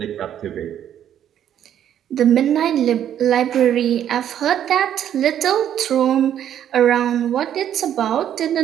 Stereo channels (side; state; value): left; quieter; 10.2 dB